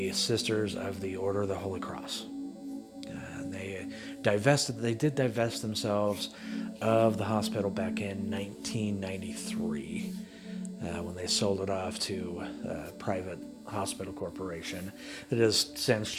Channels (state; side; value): identical; both; correlation 1.00